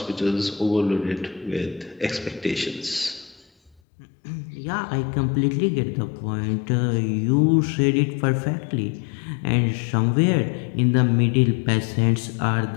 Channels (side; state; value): right; drops out; at 3.8 s